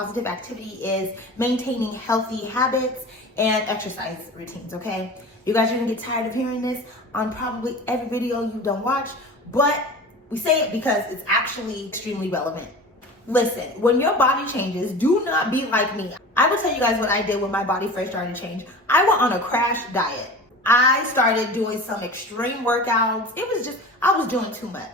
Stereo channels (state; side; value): normal; both; correlation 0.36